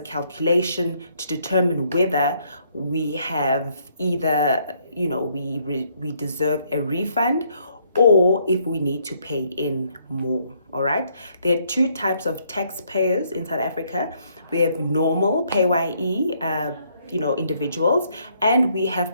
calculation to determine whether we have either, we deserve a refund, or if we need to pay in more. All right, there are two types of taxpayers in South Africa. We have normal PAYE individuals, and we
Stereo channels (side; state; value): both; inverted; correlation -0.69